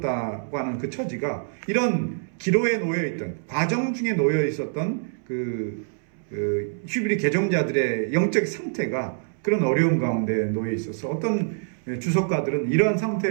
하는 그 처지가 이런 기로에 놓여있던, 과정 중에 놓여 있었던 히브리 개종자들의 영적 상태가 그런 어려움 가운데 놓여 있어서 어떤 주석가들은 이러한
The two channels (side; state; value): left; silent; 61 dB below the other